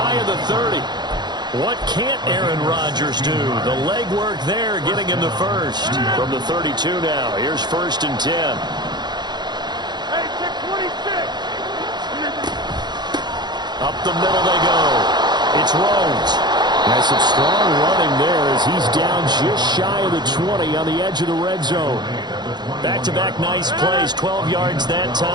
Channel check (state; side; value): late; left; 0.21 ms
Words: of the 30. What can't Aaron Rodgers do? The legwork there getting him the first. From the 32 now, here's 1st and 10. Hey, check 26. Up the middle they go. It's Rhodes. Has some strong running there as he's down just shy of the 20 on the edge of the red zone. Back-to-back nice plays, 12 yards that